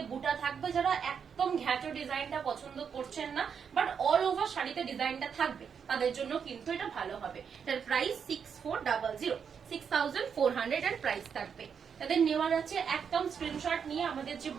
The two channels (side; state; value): left; quieter; 6.9 dB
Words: বুটা থাকবে। যারা একদম ঘ্যাটো ডিজাইনটা পছন্দ করছেন না বাট অল ওভার শাড়িতে ডিজাইনটা থাকবে তাদের জন্য কিন্তু এটা ভালো হবে। এটার প্রাইস 6400, 6400 এর প্রাইস থাকবে। তাদের নেওয়ার আছে একদম স্ক্রিনশট নিয়ে আমাদের যে